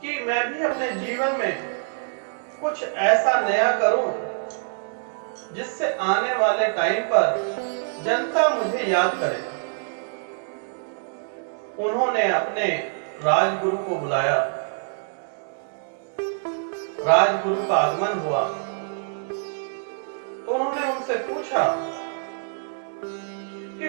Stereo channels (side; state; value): left; silent; digital silence